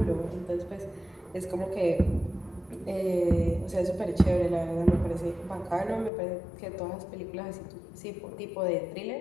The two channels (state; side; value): drops out; right; at 6.1 s